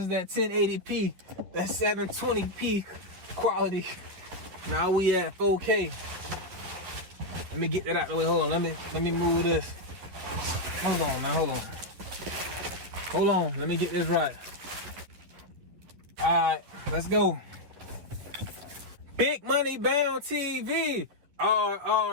that 1080p, that 720p quality. Now we at 4K. Let me get that out the way. Hold on, let me move this. Hold on now, hold on. Let me get this right. Alright, let's go. Big Money Bound TV,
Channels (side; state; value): left; late; 11 ms